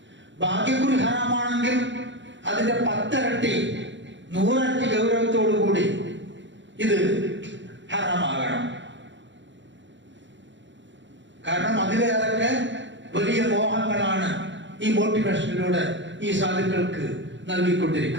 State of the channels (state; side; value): late; left; 0.54 ms